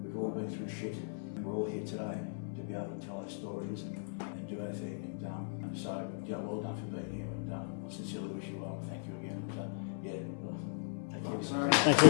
We've we're all here today to be able to tell our stories and do our thing. And so, yeah, well done for being here, and I sincerely wish you well. Thank you again. And, yeah, well, Thank you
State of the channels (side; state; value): right; silent; 52 dB below the other